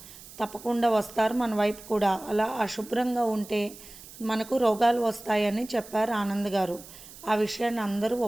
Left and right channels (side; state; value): right; noise; hiss, 18 dB below the sound